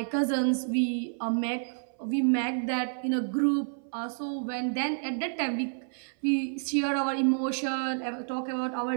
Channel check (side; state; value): left; silent; 58 dB below the other